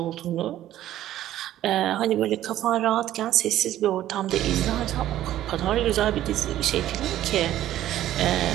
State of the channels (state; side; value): quieter; left; 13.1 dB